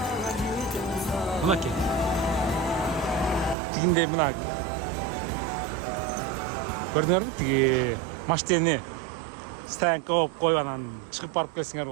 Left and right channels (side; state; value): left; drops out; at 3.6 s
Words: Buna ki. Dinde buna. Gördünüz mü? Maşteni stoyanka koyup koyup çıkıp barıp kelsiңер